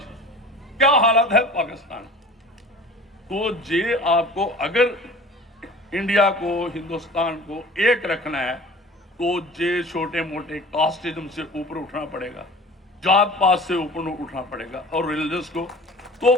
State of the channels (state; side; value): normal; both; correlation 0.42